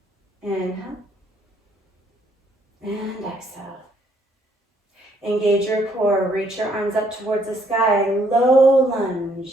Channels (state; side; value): normal; both; correlation 0.68